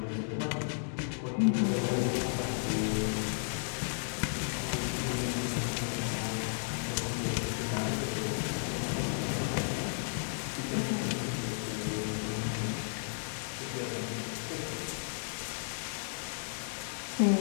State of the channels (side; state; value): right; silent; digital silence